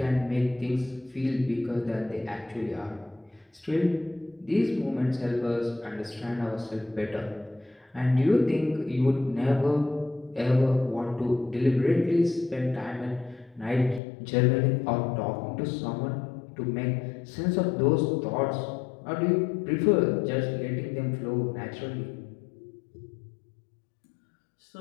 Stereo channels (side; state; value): right; drops out; at 14.0 s